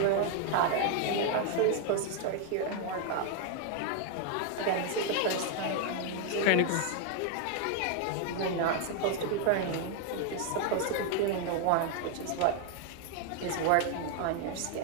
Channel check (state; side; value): different; both; correlation 0.00